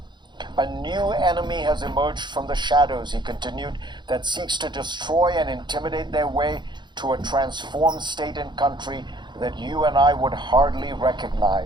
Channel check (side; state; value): left; late; 0.22 ms